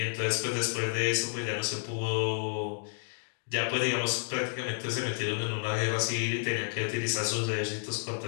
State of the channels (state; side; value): silent; right; 57 dB below the other